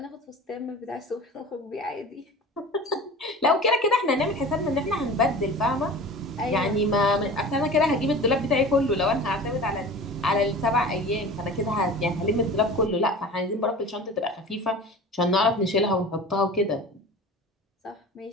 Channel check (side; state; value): both; normal; correlation 0.38